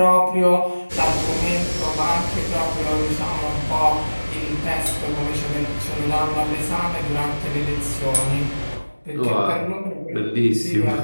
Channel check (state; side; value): inverted; both; correlation -1.00